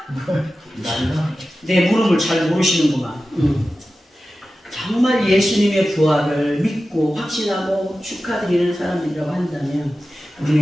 내 물음을 잘 모르시는구만. 정말 예수님의 부활을 믿고 확신하고 축하드리는 사람들이라고 한다면 우리는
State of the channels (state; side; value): normal; both; correlation 0.94